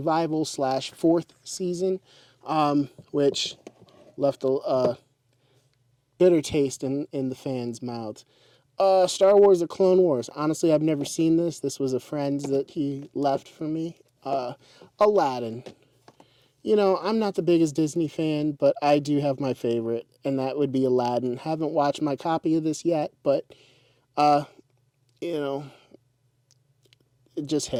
/ 4th season, which left a bitter taste in the fans' mouths. Star Wars: The Clone Wars. Honestly, I've never seen this. This was a friend that he left for me. Aladdin. I'm not the biggest Disney fan, but I do have my favorite, and that would be Aladdin. Haven't watched my copy of this yet, but, it just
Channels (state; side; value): identical; both; correlation 1.00